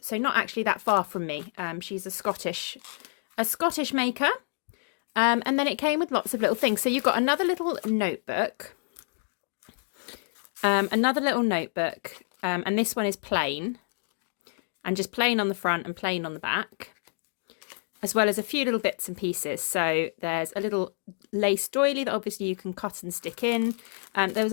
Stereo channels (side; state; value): right; silent; 59 dB below the other